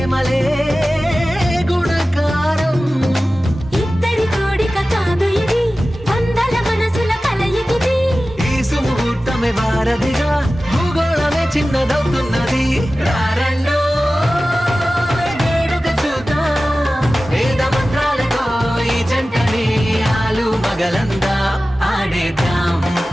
గుణకారం. ఇద్దరి కోడిక కాదు ఇది, వందల మనసుల కలయికిది. ఈ సుముహూర్తమే వారధిగా భూగోళమే చిన్నదవుతున్నది. రారండో వేడుక చూద్దాం, వేద మంత్రాలతో ఈ జంటని ఆలు మగలందా ఆడేద్దాం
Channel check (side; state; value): both; normal; correlation 0.96